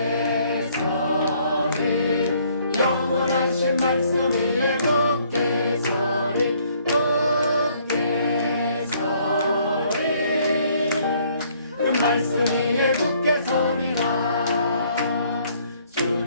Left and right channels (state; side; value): inverted; both; correlation -0.64